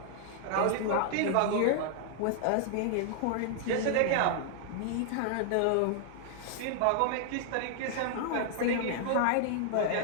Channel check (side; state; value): both; different; correlation 0.00